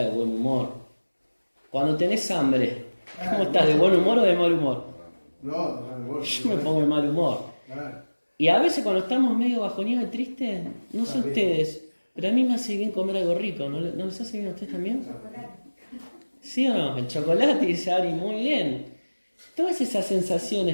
de buen humor? Cuando tenés hambre, ¿cómo estás? ¿De buen humor o de mal humor? No, vos. Yo me pongo de mal humor. Claro. Y a veces cuando estamos medio bajoneados y tristes, no sé Está bien. ustedes, pero a mí me hace bien comer algo rico. ¿No les hace bien a ustedes también? ¿Sí o no? El chocolate, dice Ari, muy bien. Todas esas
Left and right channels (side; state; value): both; inverted; correlation -1.00